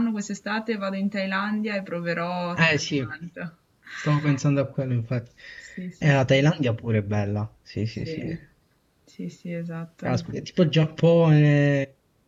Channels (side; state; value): both; identical; correlation 1.00